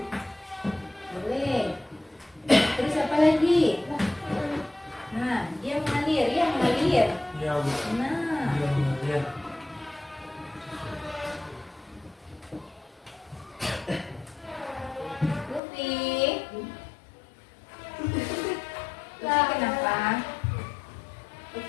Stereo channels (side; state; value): right; drops out; at 15.6 s